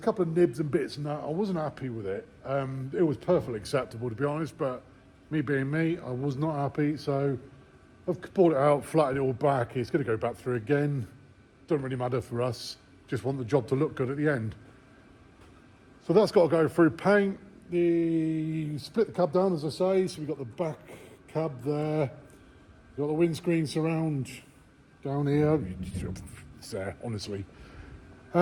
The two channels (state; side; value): identical; both; correlation 1.00